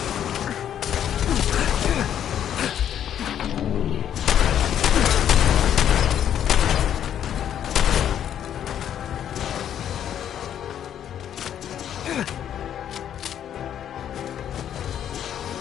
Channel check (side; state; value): right; quieter; 9.9 dB